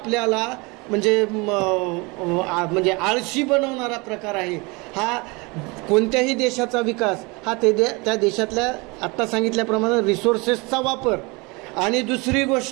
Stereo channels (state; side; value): quieter; left; 27.1 dB